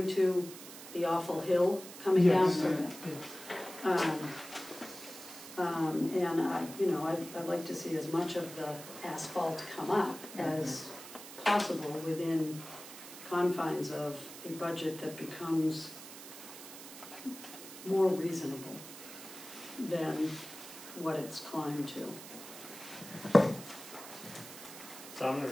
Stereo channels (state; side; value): noise; right; hiss, 14 dB below the sound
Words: to the awful hill coming down? Yes. And I'd like to see as much of the asphalt come up as possible within confines of a budget that becomes more reasonable than what it's climbed to. So I'm